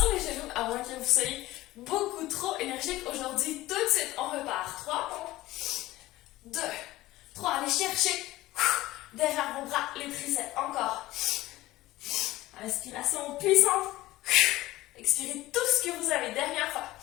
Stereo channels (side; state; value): right; quieter; 17.3 dB